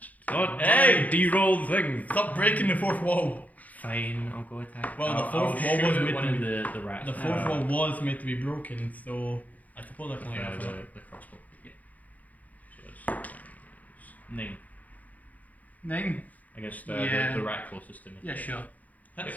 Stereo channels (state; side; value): late; right; 0.077 ms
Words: Not Hey! de-roll the thing. Stop breaking the fourth wall. Fine, I'll go attack. Well, the I'll fourth wall shoot was at made one to of be- the rats. The fourth wall was meant to be broken, so I suppose I can like that. the crossbow. Yeah. So it's 9 9. against Yeah. the rat closest to me. Yeah, sure.